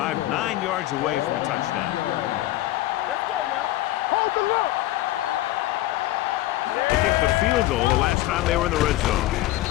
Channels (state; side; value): quieter; right; 16.3 dB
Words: 9 yards away from a touchdown. Let's go now. Hold the look. Strong right. They kicked the field goal the last time they were in the red zone.